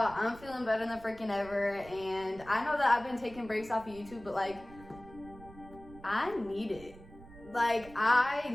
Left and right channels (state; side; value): noise; right; rumble, 19 dB below the sound